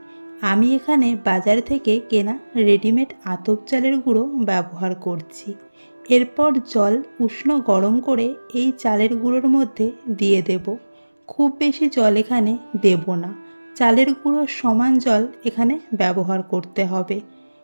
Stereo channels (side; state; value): both; inverted; correlation -1.00